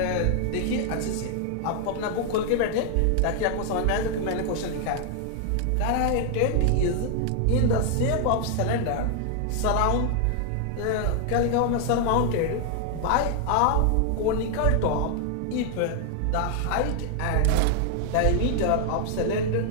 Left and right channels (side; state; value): both; different; correlation 0.00